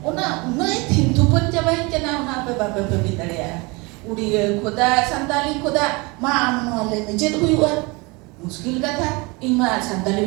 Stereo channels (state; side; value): quieter; left; 26.7 dB